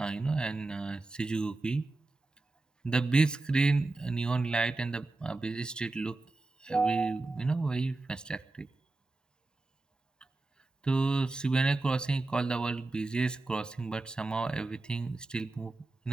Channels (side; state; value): left; quieter; 3.1 dB